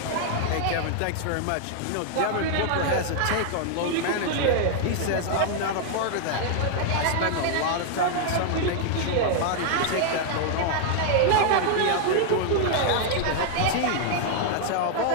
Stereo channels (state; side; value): different; both; correlation -0.01